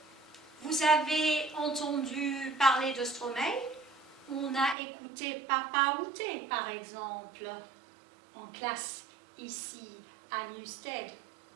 Vous avez entendu parler de Stromae? On a écouté Papa Outé, par exemple, en classe ici à Newstead.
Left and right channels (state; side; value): drops out; left; at 4.8 s